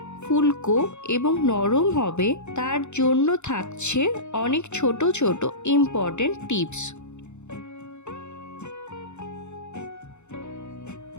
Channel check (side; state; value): right; late; 0.83 ms